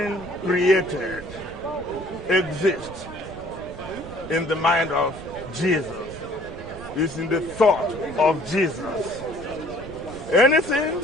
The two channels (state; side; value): noise; right; rumble, 15 dB below the sound